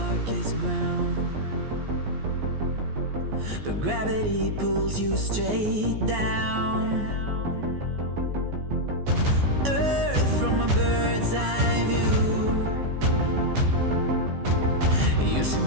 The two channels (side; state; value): left; late; 14 ms